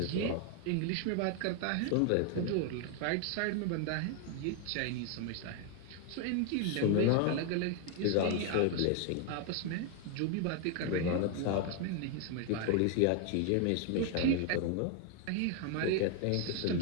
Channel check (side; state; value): both; different; correlation 0.01